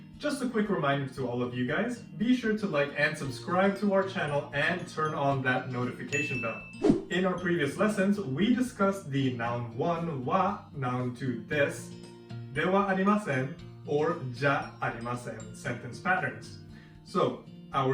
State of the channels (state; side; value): identical; both; correlation 1.00